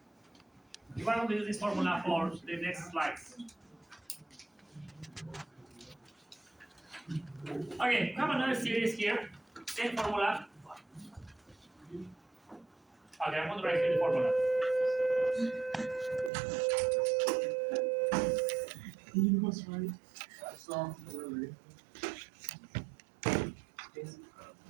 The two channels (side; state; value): left; drops out; at 16.3 s